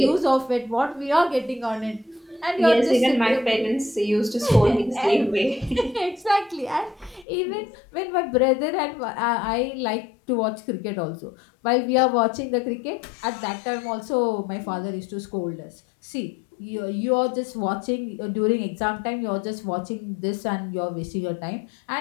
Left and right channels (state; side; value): drops out; right; at 7.2 s